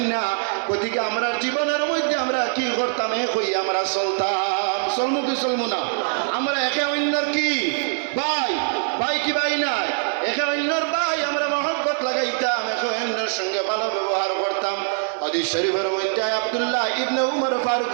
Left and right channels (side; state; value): left; silent; 64 dB below the other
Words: না গতিকে আমরা জীবনের মধ্যে আমরা কি করতাম এক হই আমরা চলতাম চলমু কি চলমু না আমরা একে অন্যর কি ভাই কি ভাই নাই একে অন্যর ভাই আমরা মহব্বত লাগাইতাম একে অন্যের সঙ্গে ভালো ব্যবহার করতাম হাদিস শরীফের মধ্যে আব্দুল্লাহ ইবনে উমর ফারুক